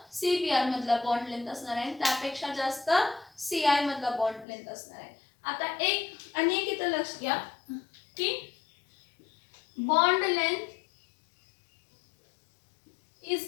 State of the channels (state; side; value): drops out; right; at 4.5 s